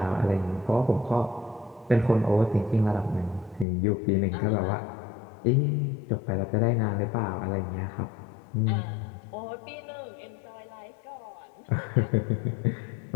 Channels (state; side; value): drops out; right; at 3.7 s